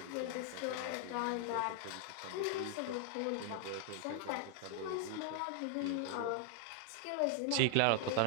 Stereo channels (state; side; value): different; both; correlation 0.00